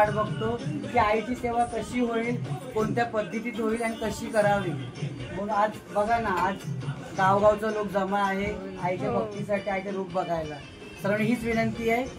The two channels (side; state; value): both; identical; correlation 1.00